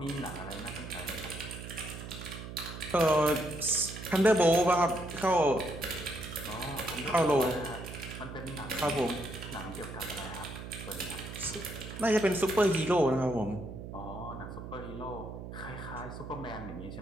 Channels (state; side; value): noise; right; hum, 10 dB below the sound